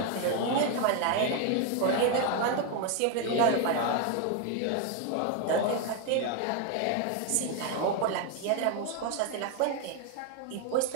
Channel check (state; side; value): different; both; correlation 0.01